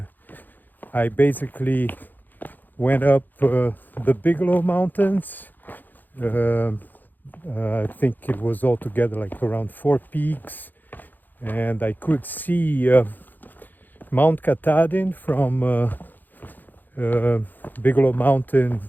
I basically went up the Bigelow Mountains. I think it was altogether like around 4 peaks. And I could see Mount Katahdin from Bigelow Mountain,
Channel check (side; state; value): right; late; 0.087 ms